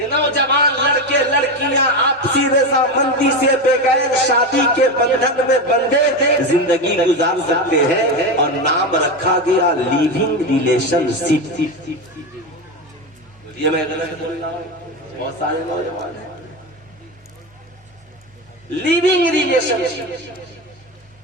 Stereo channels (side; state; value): both; normal; correlation 0.17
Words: नौजवान लड़के लड़कियां आपसी रजामंदी से बगैर शादी के बंधन में बंधे जिंदगी गुजार सकते हैं, और नाम रखा गया लिविंग रिलेशनशिप। ये मैं गलत बोल रहा हूं, बहुत सारे नौजवान हैं। लिविंग रिलेशनशिप